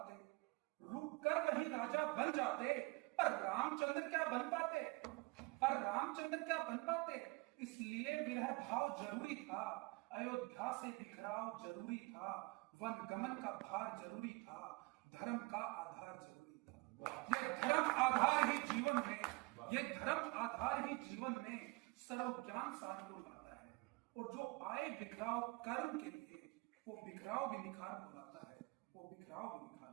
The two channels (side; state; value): left; quieter; 25.9 dB